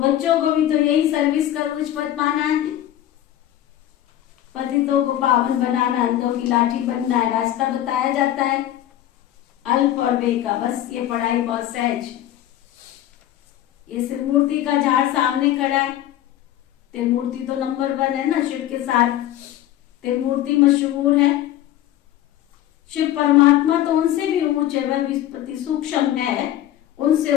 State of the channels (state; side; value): quieter; right; 12.7 dB